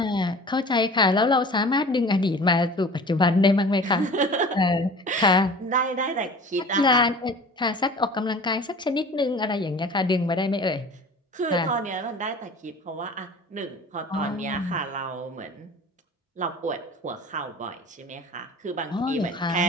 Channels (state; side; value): normal; both; correlation 0.42